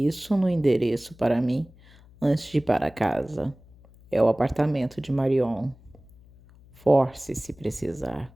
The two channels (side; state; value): left; noise; hum, 25 dB below the sound